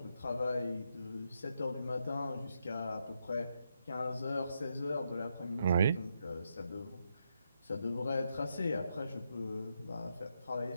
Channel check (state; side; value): inverted; both; correlation -0.81